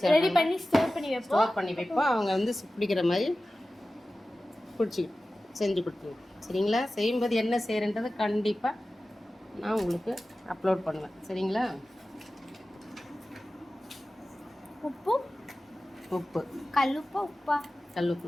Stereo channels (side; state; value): both; normal; correlation 0.95